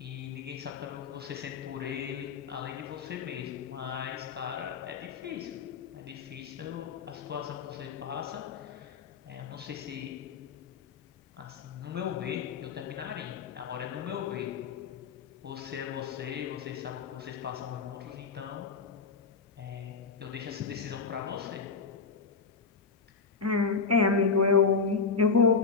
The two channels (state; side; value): quieter; right; 5.2 dB